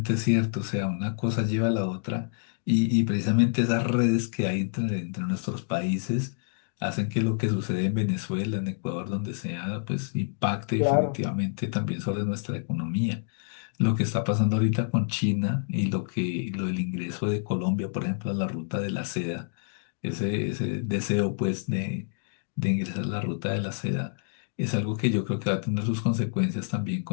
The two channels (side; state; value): right; silent; digital silence